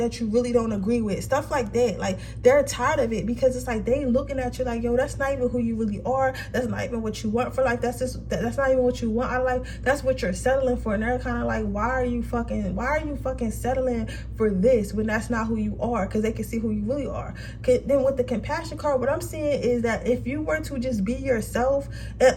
you really don't agree with, stuff like that. Like, they're tired of it, because it's like they looking at you like, yo, that's not even who you really are. That's not even what you want for life. That's not even what you want out of life. That's what you're settling for. And they're kind of like, why are you fucking settling for this when that's not who you are? Because they can see who you really are. Then with the compassion card, what I'm seeing is that if you were to just be yourself,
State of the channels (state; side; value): identical; both; correlation 1.00